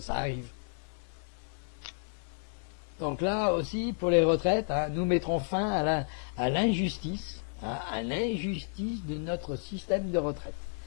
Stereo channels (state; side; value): silent; right; 57 dB below the other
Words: arrive. Donc là aussi, pour les retraites, hein, nous mettrons fin à l'injustice, hein, à l'injustice de notre système de retraite.